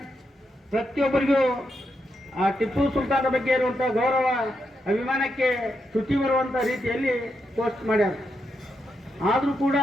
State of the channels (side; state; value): both; normal; correlation 0.83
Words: ಪ್ರತಿಯೊಬ್ಬರಿಗೂ ಆ ಟಿಪ್ಪು ಸುಲ್ತಾನರ ಬಗ್ಗೆ ಇರುವಂಥ ಗೌರವ, ಅಭಿಮಾನಕ್ಕೆ ಚ್ಯುತಿ ಬರುವಂಥ ರೀತಿಯಲ್ಲಿ ಪೋಸ್ಟ್ ಮಾಡ್ಯಾರ. ಆದರೂ ಕೂಡ